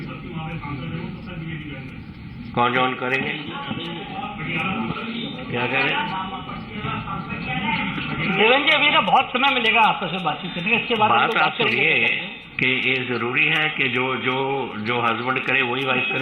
कौन join करेंगे? क्या कह रहे? देवेंद्र जी, अभी ना बहुत समय मिलेगा आपस में बातचीत करने का। इसके बाद बात आप सुनिए कि ये जरूरी है कि जो हस्बैंड करे वही वाइफ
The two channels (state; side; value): identical; both; correlation 1.00